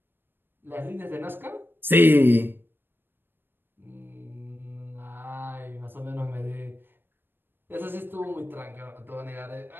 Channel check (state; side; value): late; left; 0.098 ms